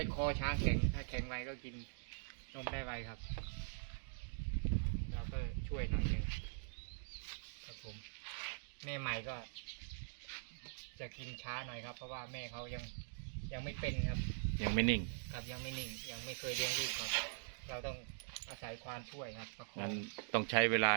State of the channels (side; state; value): left; silent; digital silence